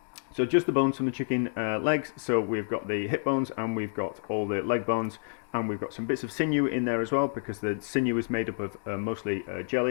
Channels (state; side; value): silent; right; 59 dB below the other